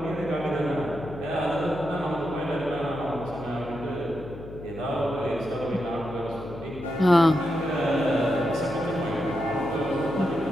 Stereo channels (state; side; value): noise; left; hum, 13 dB below the sound